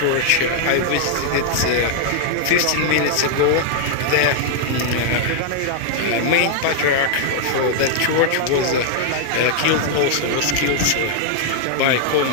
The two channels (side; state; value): both; different; correlation 0.00